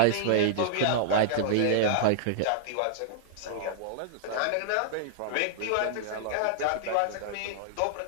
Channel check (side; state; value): both; different; correlation -0.01